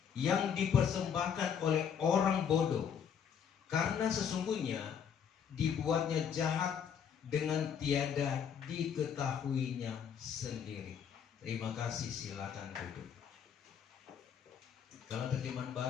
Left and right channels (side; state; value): right; quieter; 7.8 dB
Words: yang dipersembahkan oleh orang bodoh, karena sesungguhnya dibuatnya jahat dengan tiada diketahuinya sendiri. Terima kasih, silakan duduk. Kalau terjemahan